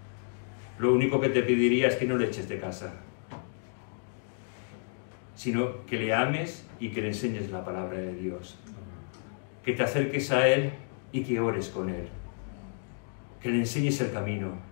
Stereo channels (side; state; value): right; silent; 57 dB below the other